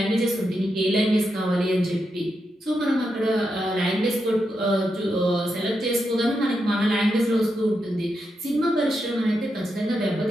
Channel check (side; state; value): both; normal; correlation 0.85